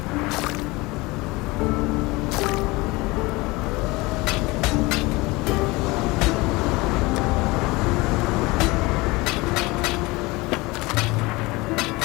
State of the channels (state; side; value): quieter; right; 22.9 dB